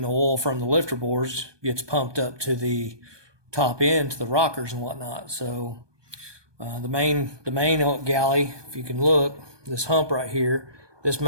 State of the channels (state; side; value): late; left; 1.2 ms